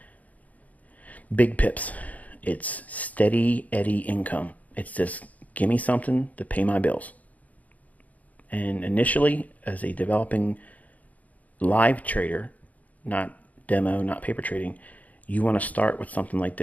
big pips. It's steady Eddie income. It's just give me something to pay my bills. And initially, as a developing live trader, not demo, not paper trading, you want to start with something like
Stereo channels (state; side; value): late; right; 0.074 ms